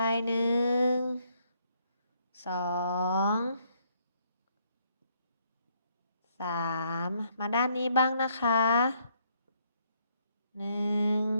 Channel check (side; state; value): both; inverted; correlation -0.70